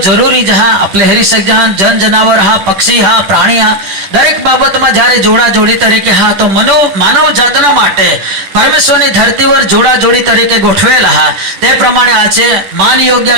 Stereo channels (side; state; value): left; late; 10 ms